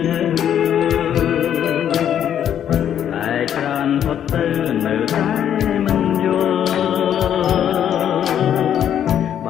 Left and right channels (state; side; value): quieter; right; 9.7 dB